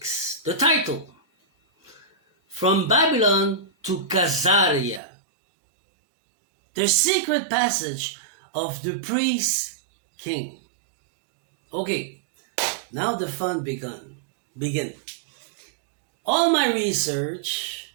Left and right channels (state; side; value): drops out; left; at 5.0 s